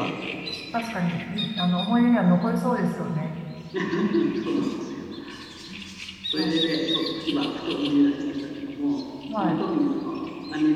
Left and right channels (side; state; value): both; identical; correlation 1.00